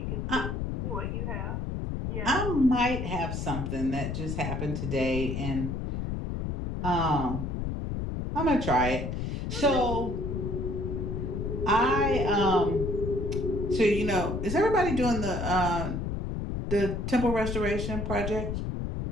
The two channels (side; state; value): left; noise; rumble, 3 dB below the sound